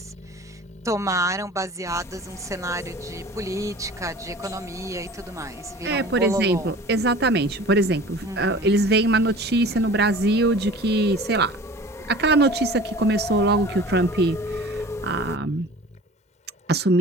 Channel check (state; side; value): normal; both; correlation 0.42